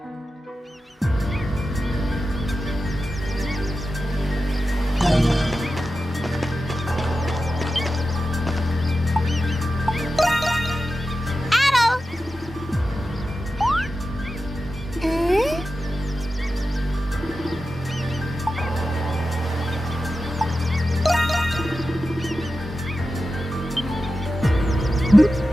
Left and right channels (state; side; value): normal; both; correlation 0.92